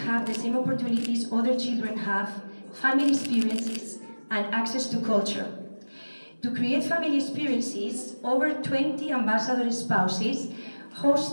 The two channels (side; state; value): both; inverted; correlation -1.00